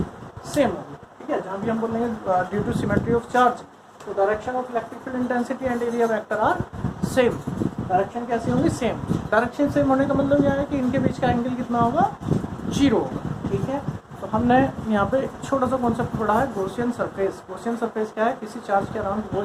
सेम होगी। ठीक है, जहाँ भी हम बोलेंगे due to symmetry of charge तो direction of electric field intensity and area vector are same. Direction कैसी होंगी? सेम। डायरेक्शन सेम होने का मतलब यह है कि इनके बीच का एंगल कितना होगा? 0 होगा। ठीक है, तो हमने यहाँ पे छोटा सा कॉन्सेप्ट पढ़ा है गॉसियन सरफेस। गॉसियन सरफेस क्या है? किसी चार्ज के अराउंड वो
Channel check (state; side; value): identical; both; correlation 1.00